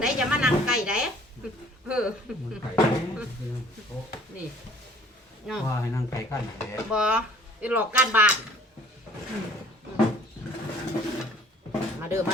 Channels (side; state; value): both; normal; correlation 0.53